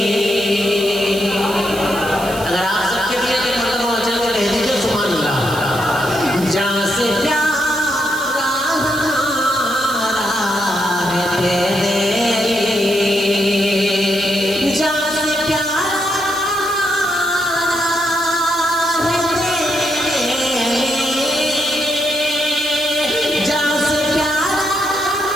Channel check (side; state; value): right; noise; hiss, 13 dB below the sound